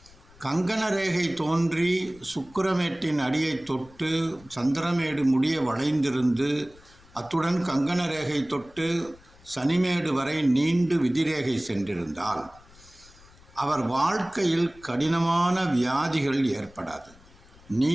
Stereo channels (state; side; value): noise; left; rumble, 25 dB below the sound